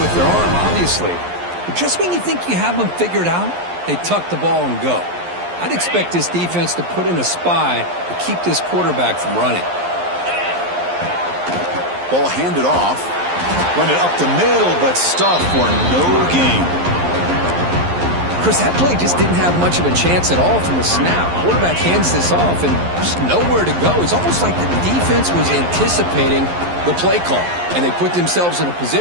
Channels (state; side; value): late; left; 11 ms